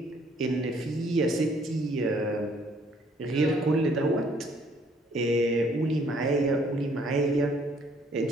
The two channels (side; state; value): both; normal; correlation 0.63